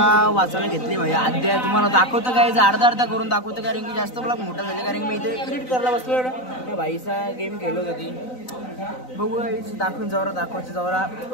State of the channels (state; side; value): late; right; 3.9 ms